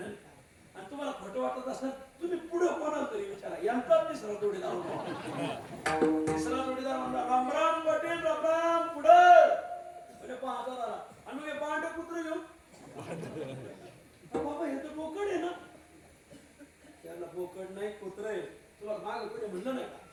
आणि तुम्हाला खोटं वाटत असेल तुम्ही पुढे कोणाला तरी विचारा, यांचा तिसरा जोडीदार होता. तिसरा जोडीदार म्हणला रामराम पाटील रामराम पुढं म्हणजे 5000 आला. आणि मग हे पांढरे कुत्र घेऊन बाबा हे तर बोकड आहे ना. त्याला बोकड नाही कुत्र आहे. तुला माग कुठे म्हणलं नाही का?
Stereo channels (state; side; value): identical; both; correlation 1.00